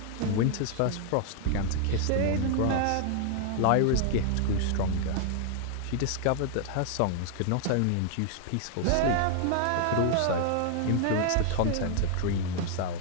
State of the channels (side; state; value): both; different; correlation 0.00